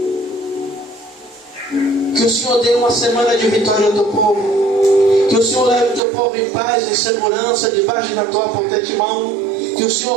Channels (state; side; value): drops out; left; at 6.0 s